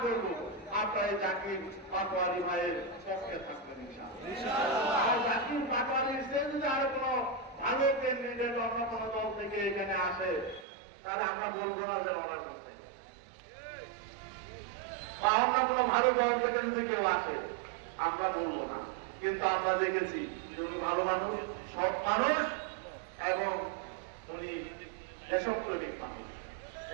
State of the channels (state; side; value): drops out; left; at 10.7 s